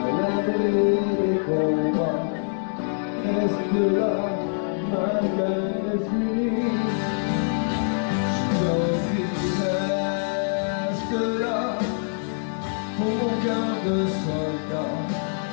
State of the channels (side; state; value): right; silent; 62 dB below the other